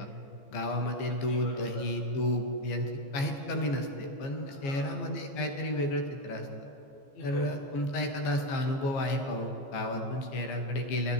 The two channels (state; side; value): late; right; 15 ms